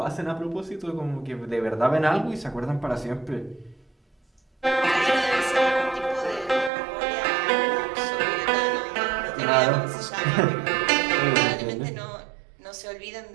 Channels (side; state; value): left; drops out; at 6.7 s